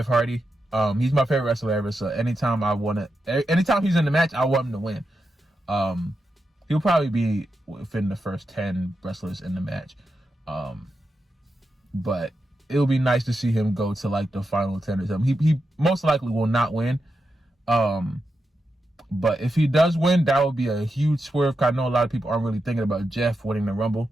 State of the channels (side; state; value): both; normal; correlation 0.87